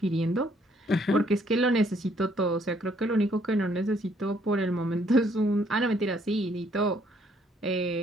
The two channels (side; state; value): both; normal; correlation 0.67